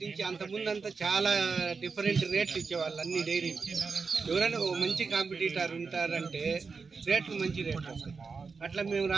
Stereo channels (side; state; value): left; quieter; 4.9 dB